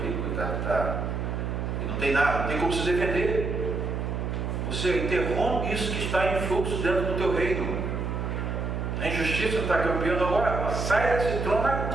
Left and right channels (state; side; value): noise; right; hum, 2 dB below the sound